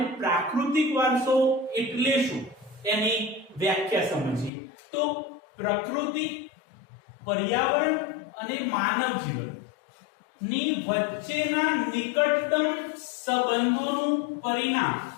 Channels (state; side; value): drops out; right; at 4.5 s